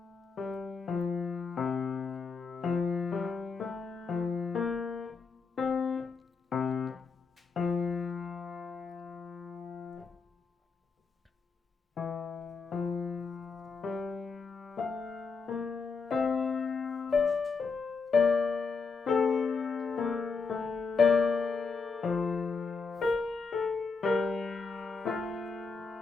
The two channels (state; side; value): quieter; right; 4.8 dB